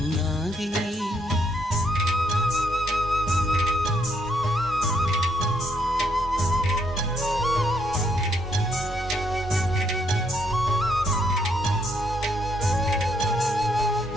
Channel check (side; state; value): both; normal; correlation 0.73